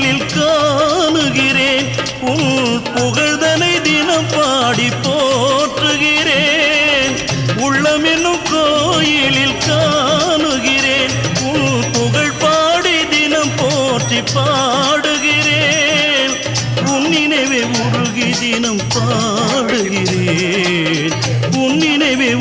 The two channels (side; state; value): both; identical; correlation 1.00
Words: காணுகிறேன். உன் புகழ்தனை தினம் பாடி போற்றுகிறேன். உள்ளமெனும் கோயிலில் காணுகிறேன். உன் புகழ் பாடி தினம் போற்றி பாடுகிறேன். உன் நினைவே உருகி தினம் பாடுகிறேன். உன் நினைவே